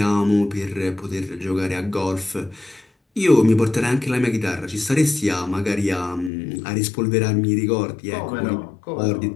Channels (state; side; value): drops out; right; at 6.3 s